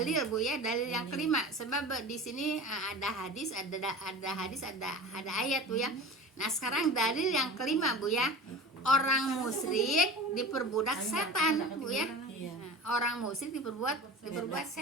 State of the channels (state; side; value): normal; both; correlation 0.34